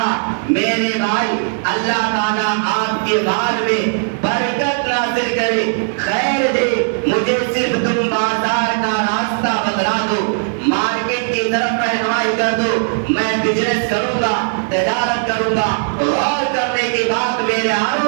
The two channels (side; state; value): left; silent; digital silence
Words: میرے بھائی اللہ تعالیٰ آپ کے مال میں برکت نازل کرے، خیر دے، مجھے صرف تم بازار کا راستہ بتلا دو، مارکیٹ کی طرف رہنمائی کر دو، میں بزنس کروں گا، تجارت کروں گا۔ غور کرنے کی بات میرے